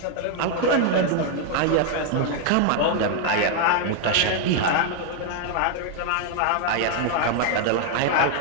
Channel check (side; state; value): both; different; correlation 0.00